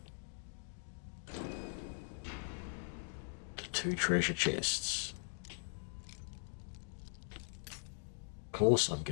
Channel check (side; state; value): right; silent; digital silence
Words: The 2 treasure chests. Of course I'm